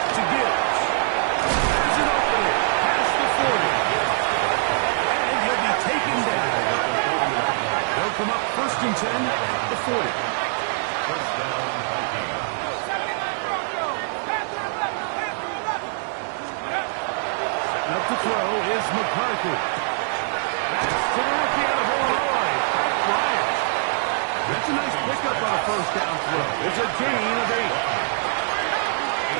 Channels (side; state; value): left; silent; 63 dB below the other